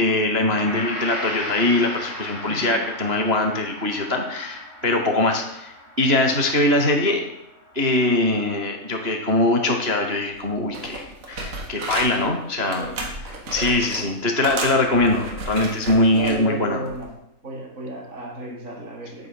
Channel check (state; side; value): late; left; 3.0 ms